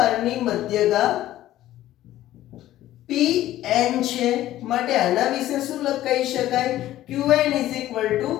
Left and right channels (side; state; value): right; quieter; 14.1 dB